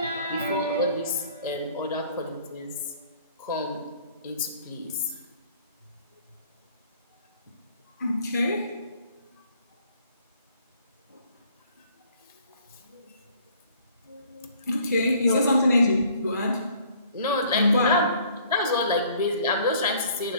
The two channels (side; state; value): both; inverted; correlation -0.57